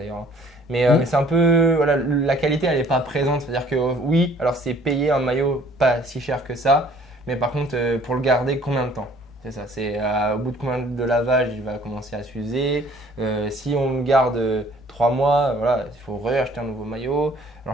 Mais c'est un peu, voilà, la qualité, elle n'est pas présente. C'est-à-dire que oui, alors c'est payer un maillot pas si cher que ça, mais par contre, pour le garder, combien de temps? C'est ça, c'est au bout de combien de lavage il va commencer à s'user. Si on le garde 3 mois, voilà, il faut réacheter un nouveau maillot.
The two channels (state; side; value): noise; left; hum, 26 dB below the sound